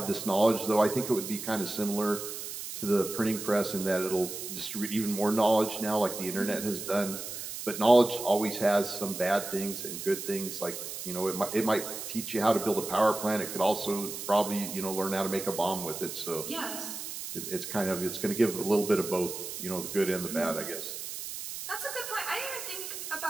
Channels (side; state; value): right; noise; hiss, 7 dB below the sound